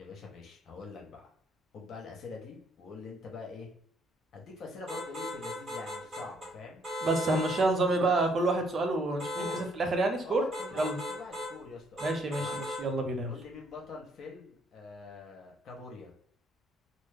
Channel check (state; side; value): normal; both; correlation 0.68